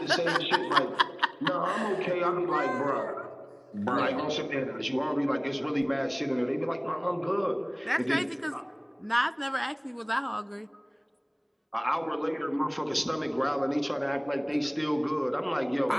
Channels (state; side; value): identical; both; correlation 1.00